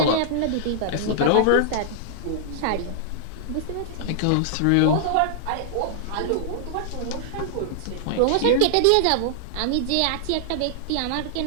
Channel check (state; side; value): different; both; correlation -0.01